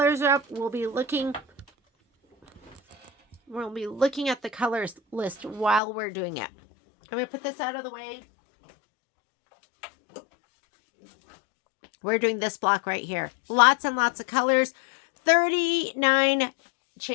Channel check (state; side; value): drops out; right; at 5.8 s